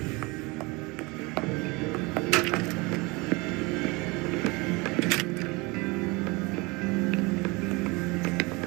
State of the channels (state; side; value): quieter; left; 25.7 dB